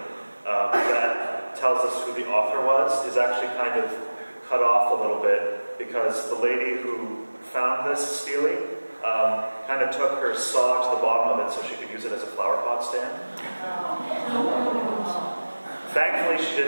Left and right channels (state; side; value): inverted; both; correlation -1.00